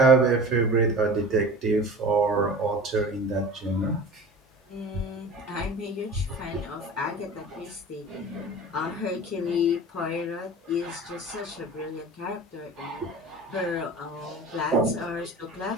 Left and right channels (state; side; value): normal; both; correlation 0.38